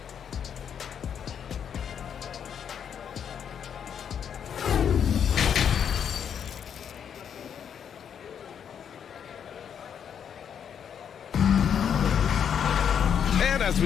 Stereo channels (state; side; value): quieter; right; 8.1 dB